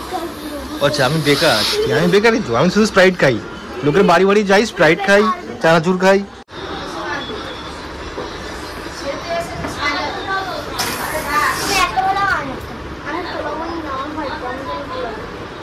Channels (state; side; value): identical; both; correlation 1.00